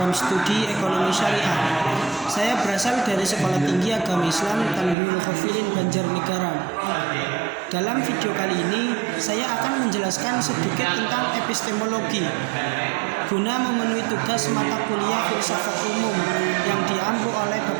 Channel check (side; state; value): left; drops out; at 5.0 s